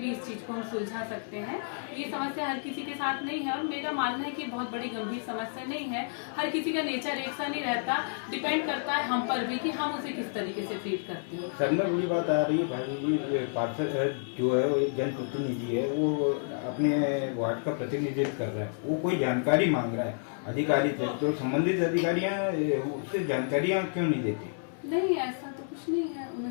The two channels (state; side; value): silent; right; 58 dB below the other